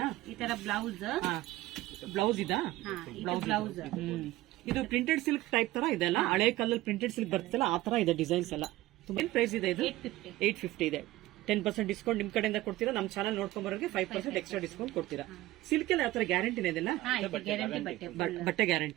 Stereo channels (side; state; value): left; quieter; 17.1 dB